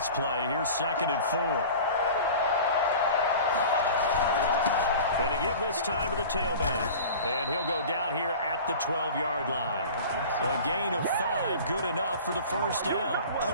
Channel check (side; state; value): both; inverted; correlation -0.39